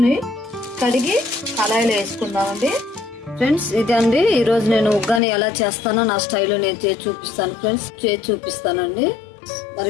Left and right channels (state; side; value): drops out; right; at 5.2 s